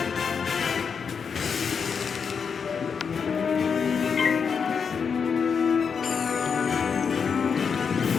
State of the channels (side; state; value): right; quieter; 6.2 dB